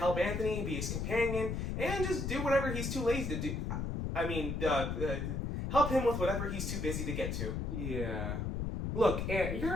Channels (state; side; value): noise; left; rumble, 2 dB below the sound